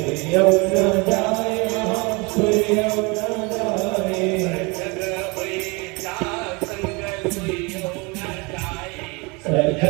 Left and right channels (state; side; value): quieter; left; 28.3 dB